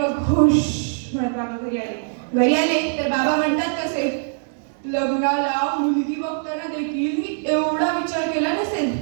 खुश म्हणत बाबा घरी आले तर बाबा म्हणतात कसे, लग्नाला मुलगी बघताना देखील मी एवढा विचार केला नसेल.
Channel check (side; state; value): left; silent; 64 dB below the other